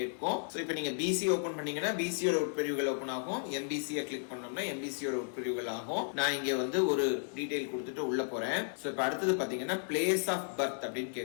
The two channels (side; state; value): right; silent; digital silence